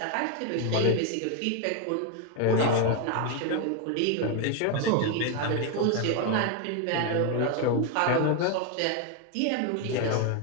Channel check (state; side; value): different; both; correlation 0.01